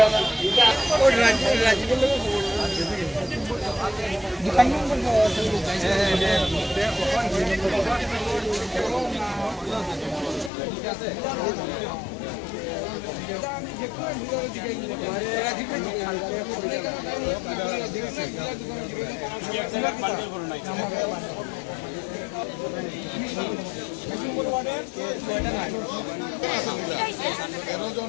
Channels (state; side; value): drops out; right; at 10.5 s